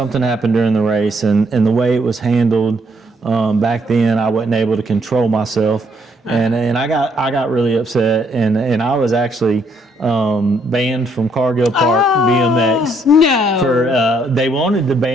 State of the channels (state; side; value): normal; both; correlation 0.70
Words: happened during the race, and the way it was handled. Back then, I wasn't able to control myself, and I got really upset, and I was actually banned from Cargill Park BMX. No. For they wanted to